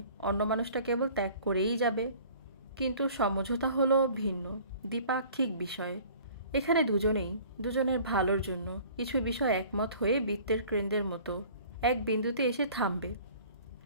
অন্য মানুষটা কেবল ত্যাগ করেই যাবে। কিন্তু সমঝোতা হলো ভিন্ন, দ্বিপাক্ষিক বিষয়। এখানে দুজনেই দুজনের ভালোর জন্য কিছু বিষয় একমত হয়ে বৃত্তের কেন্দ্রের মতো এক বিন্দুতে এসে থামবে।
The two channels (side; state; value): both; inverted; correlation -0.49